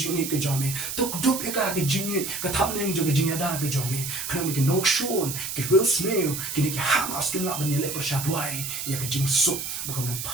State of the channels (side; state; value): right; noise; hiss, 5 dB below the sound